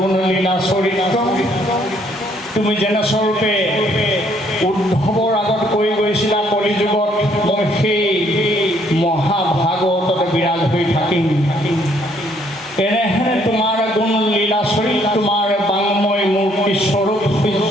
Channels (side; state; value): both; normal; correlation 0.66